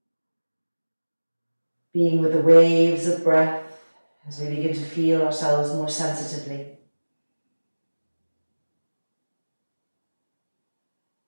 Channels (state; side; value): inverted; both; correlation -1.00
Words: Being with the waves of breath as we begin to feel ourselves more sensitively.